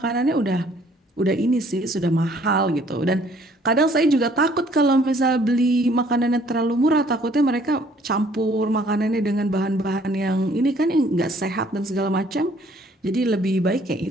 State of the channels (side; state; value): both; normal; correlation 0.60